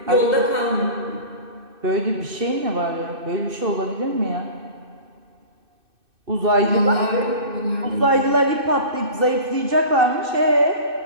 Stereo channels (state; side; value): late; left; 2.6 ms